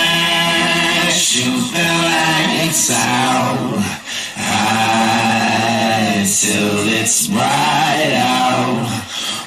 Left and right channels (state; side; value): identical; both; correlation 1.00